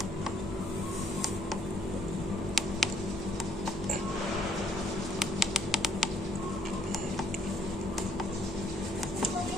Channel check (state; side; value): normal; both; correlation 0.65